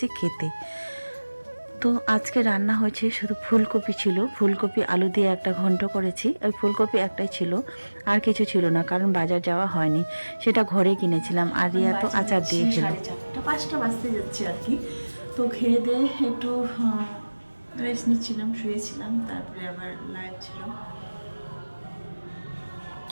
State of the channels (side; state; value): both; inverted; correlation -1.00